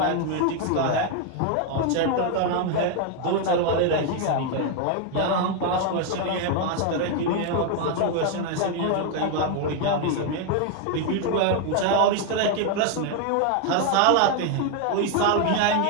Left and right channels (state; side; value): different; both; correlation 0.01